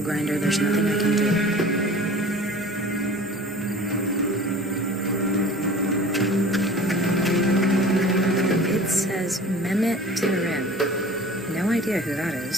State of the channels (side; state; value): both; normal; correlation 0.43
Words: grinder, there's nothing I can do. It says Mehmet Terim. No idea who that